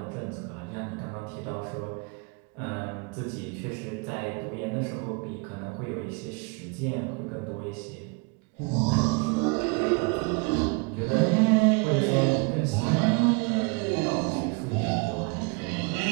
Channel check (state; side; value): quieter; left; 31.3 dB